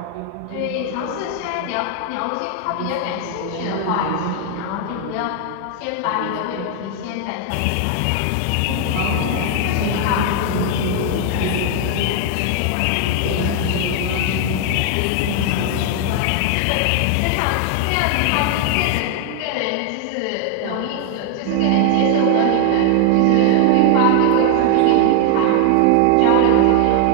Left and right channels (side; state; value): both; different; correlation 0.00